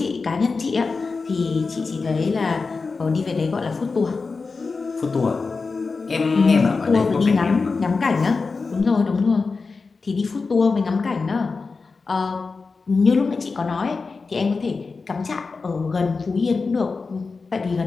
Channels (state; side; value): quieter; right; 4.3 dB